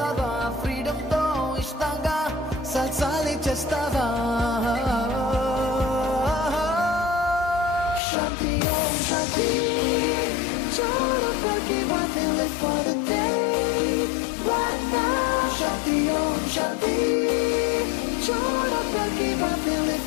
ఫ్రీడమ్ తో ఇష్టంగా సల్సాలే చేస్తావా. Shakti Om Shakti, Shakti, want to live for the day, right now. Shakti Om Shakti, Shakti, want to live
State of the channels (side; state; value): right; drops out; at 8.0 s